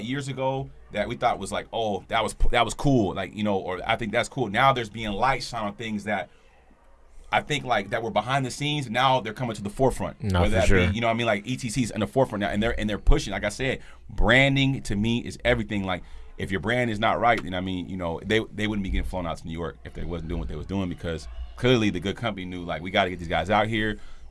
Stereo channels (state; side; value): identical; both; correlation 1.00